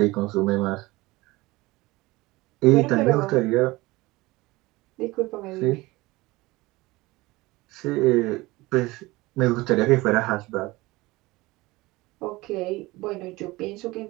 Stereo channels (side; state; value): left; quieter; 20.9 dB